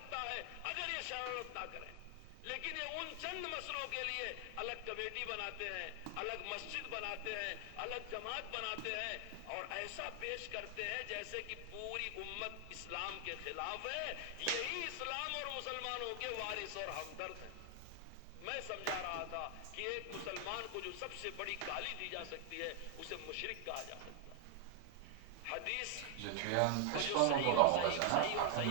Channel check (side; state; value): both; different; correlation 0.00